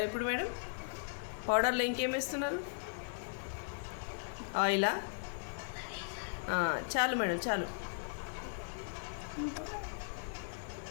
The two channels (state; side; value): silent; right; digital silence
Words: ఇప్పుడు మేడం? పౌడర్లో ఇంకేం వేస్తున్నారు? ఆయిలా? చాలు మేడం చాలు.